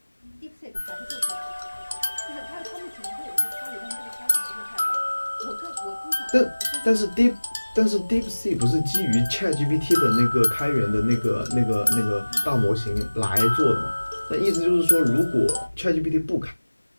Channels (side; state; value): both; inverted; correlation -1.00